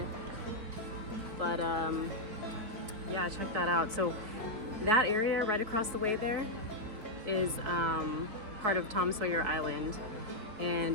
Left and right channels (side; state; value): left; late; 4.4 ms